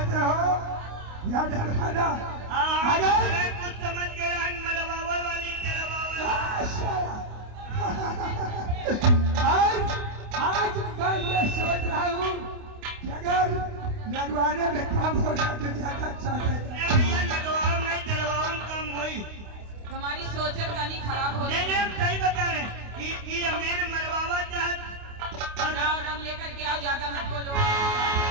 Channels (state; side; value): late; left; 28 ms